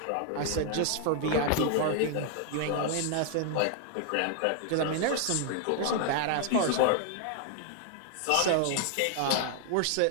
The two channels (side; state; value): both; different; correlation 0.00